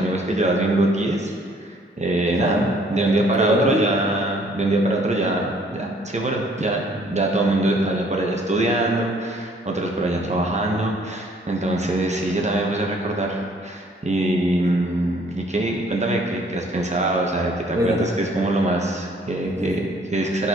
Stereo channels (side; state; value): both; normal; correlation 0.60